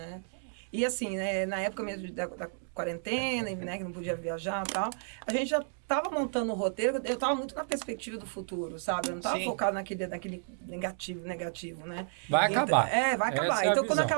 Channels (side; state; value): left; silent; digital silence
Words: E assim, né, na época mesmo da quarentena, né, que não podia viajar e tal, a gente já estava montando o roteiro, eu estava muito na perspectiva do futuro, sabe? Eu não estava focado naquele negativo, né? Vai acabar. Vai acabar. Então, quando